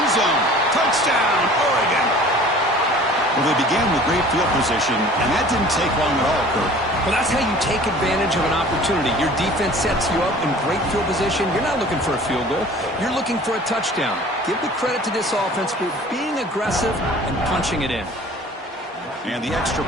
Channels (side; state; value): both; normal; correlation 0.47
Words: zone. Touchdown, Oregon. Well, they began with great field position, and that didn't take long at all, Kirk. Well, that's how you take advantage of an opportunity. Your defense sets you up in great field position. You're not looking for a field goal. You're looking for a touchdown. Give the credit to this offense for being aggressive and punching it in. And the extra